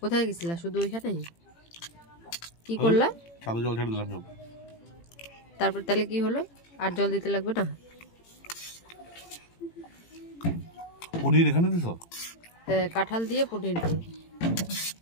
গেছিলা? শুধু ওইখানেই? কি করলা? ছাদে জল ছেড়ে দিলাম সব। তারপর তাহলে কি হলো? আর জল দিতে লাগবে না? পনির এখানে দিছ? হ্যাঁ, কাঁঠাল দিয়ে পনির দিয়ে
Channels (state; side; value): late; right; 18 ms